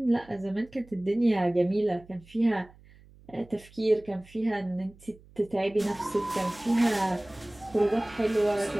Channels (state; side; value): noise; right; hum, 25 dB below the sound